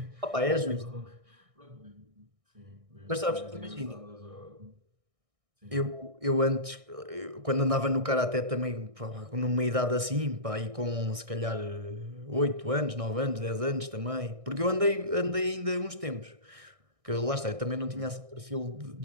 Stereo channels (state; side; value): late; left; 1.6 ms